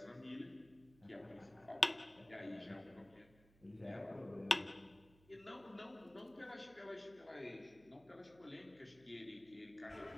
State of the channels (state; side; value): noise; right; hum, 26 dB below the sound